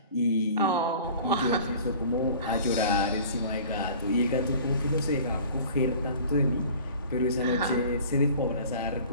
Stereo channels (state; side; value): inverted; both; correlation -0.45